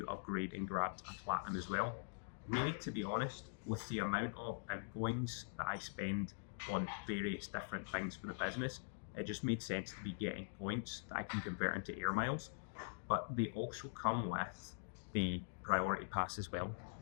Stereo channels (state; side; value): silent; right; digital silence